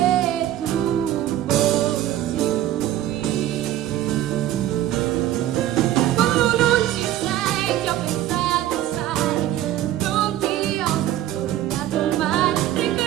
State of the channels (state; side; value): quieter; left; 13.0 dB